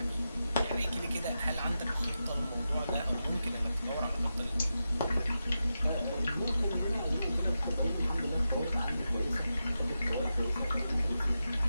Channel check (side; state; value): both; inverted; correlation -0.89